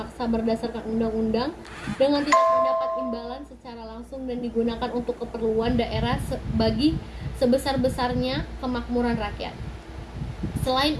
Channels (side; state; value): both; identical; correlation 1.00